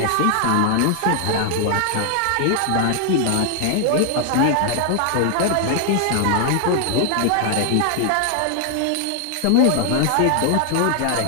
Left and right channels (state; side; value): different; both; correlation 0.00